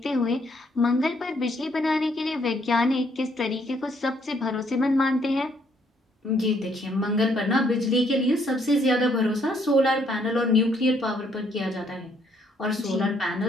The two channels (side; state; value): both; normal; correlation 0.68